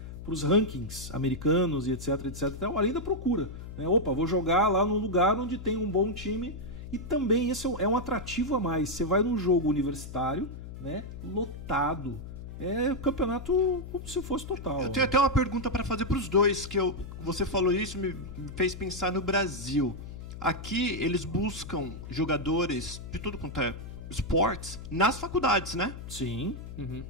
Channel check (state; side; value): noise; left; hum, 11 dB below the sound